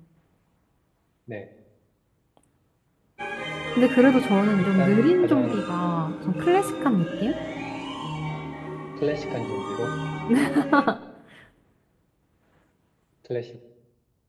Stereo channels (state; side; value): identical; both; correlation 1.00